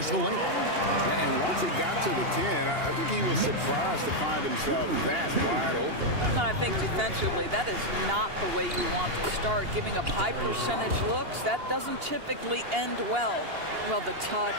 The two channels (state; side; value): late; left; 2.8 ms